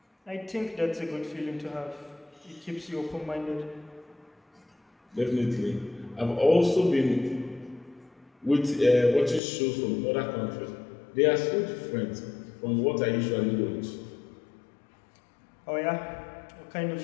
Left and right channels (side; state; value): right; drops out; at 9.4 s